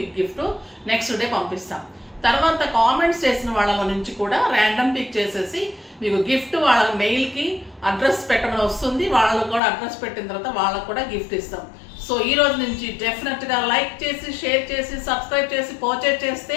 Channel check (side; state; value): right; drops out; at 9.6 s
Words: గిఫ్ట్ నెక్స్ట్ డే పంపిస్తాం. తర్వాత కామెంట్స్ చేసిన వాళ్ళలో నుంచి కూడా ర్యాండమ్ పిక్ చేసేసి మీకు గిఫ్ట్ వాళ్ళ మెయిల్కి అడ్రస్ పెట్టమని వస్తుంది. వాళ్ళకు కూడా అడ్రస్ పెట్టిన తర్వాత వాళ్ళకు కూడా గిఫ్ట్ ఇస్తాం. సో ఈ రోజు నుంచి డెఫినెట్గా లైక్ చేసి షేర్ చేసి సబ్స్క్రైబ్ చేసి పర్చేజ్